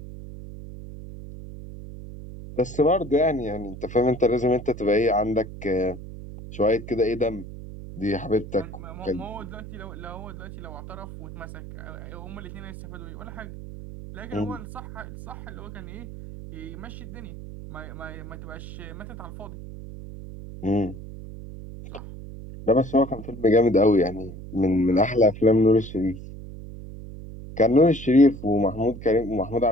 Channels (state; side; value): noise; right; hum, 12 dB below the sound